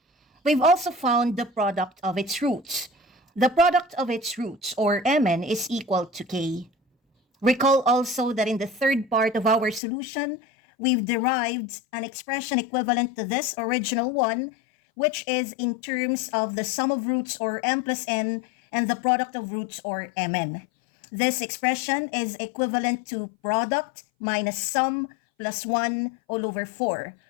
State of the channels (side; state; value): right; drops out; at 9.8 s